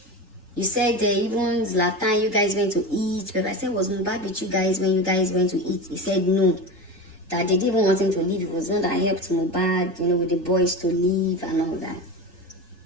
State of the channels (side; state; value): both; normal; correlation 0.26